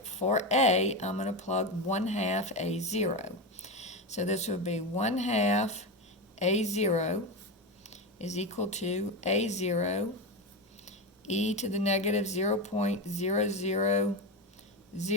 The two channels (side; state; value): both; normal; correlation 0.16